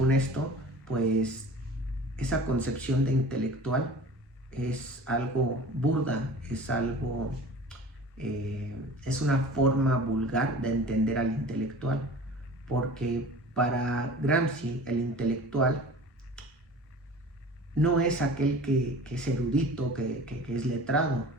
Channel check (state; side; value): normal; both; correlation 0.41